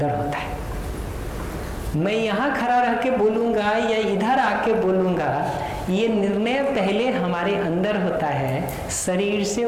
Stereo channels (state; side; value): identical; both; correlation 1.00